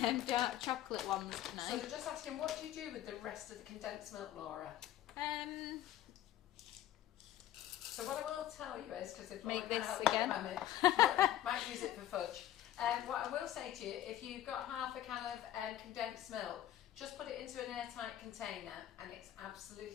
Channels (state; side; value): quieter; right; 12.6 dB